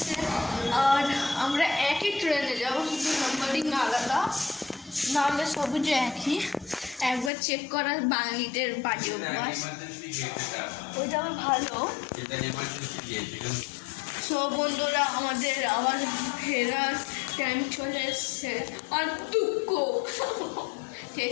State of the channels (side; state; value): right; drops out; at 7.3 s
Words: আর আমরা একই ট্রেনে যাবো, শুধু নাম্বারিং আলাদা, নাহলে সবুজে একই। একবার চেক করা বাঙালিদের বাড়ি অভ্যাস, ওইটা আমার ভালো। সব বন্ধুরা আমাদের আবার ফেরার টাইম চলে এসছে আর দুঃখ, ঠিক